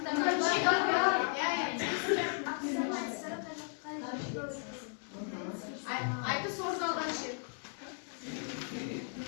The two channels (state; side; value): silent; right; 54 dB below the other